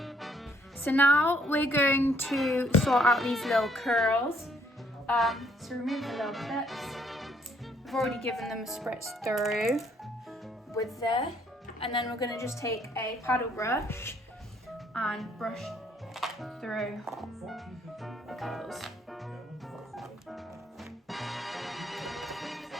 So now we're going to sort out these little curls. So remove the little clips. I've already given them a spritz through with this. And then we're going to just take a paddle brush and brush through the curls.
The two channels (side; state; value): both; normal; correlation 0.66